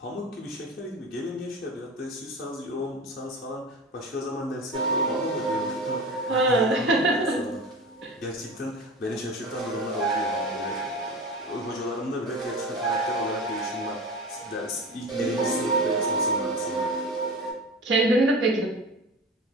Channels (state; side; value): normal; both; correlation 0.31